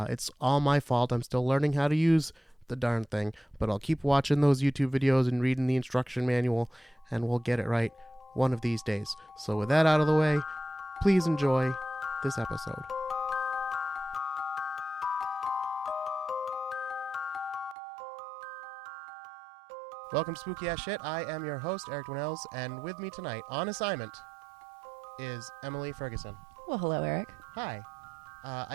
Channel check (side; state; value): left; drops out; at 17.8 s